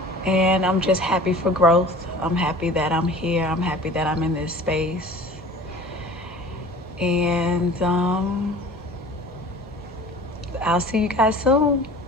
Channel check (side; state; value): both; normal; correlation 0.43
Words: And I'm just happy for growth. I'm happy that I'm here. I'm happy that I'm in this space. And I'll see you guys soon.